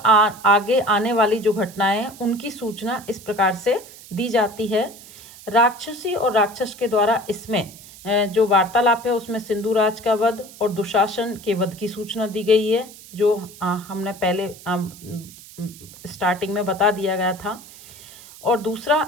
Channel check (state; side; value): noise; right; hiss, 19 dB below the sound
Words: आने वाली जो घटनाएं हैं उनकी सूचना इस प्रकार से दी जाती है। राक्षसी और राक्षस के द्वारा इसमें जो वार्तालाप है उसमें सिंधुराज का वध और दुशासन के वध की सूचना दी गई है, जो हमने पहले स्टार्टिंग में बता दिया गया था। और